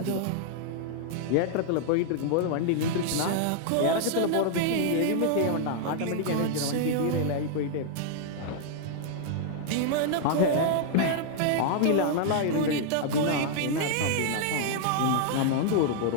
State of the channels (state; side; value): different; both; correlation 0.00